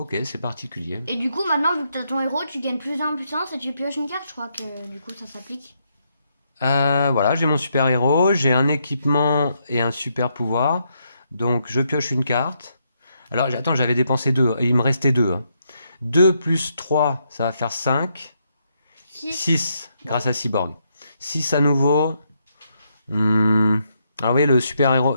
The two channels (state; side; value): inverted; both; correlation -0.77